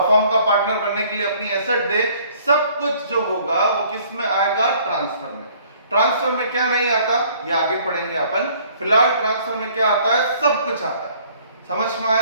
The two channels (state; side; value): inverted; both; correlation -0.58